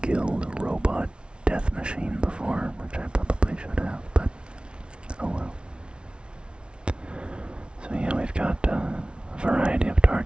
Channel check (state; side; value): late; left; 0.057 ms